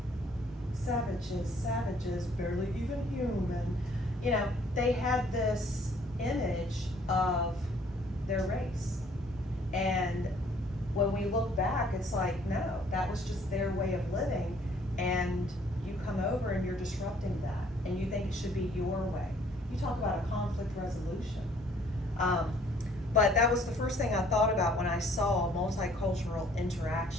Savages, barely even human. You know, they had this image of their race. And when we look back, it's like, no, that was just their way of living, and you come over and you're disrupting that, and you think it should be your way. You talk about a conflict resolution. But that was the first thing I thought about when I saw multicultural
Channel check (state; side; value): normal; both; correlation 0.60